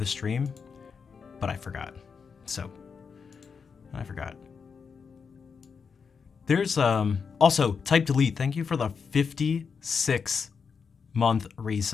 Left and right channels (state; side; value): quieter; right; 5.8 dB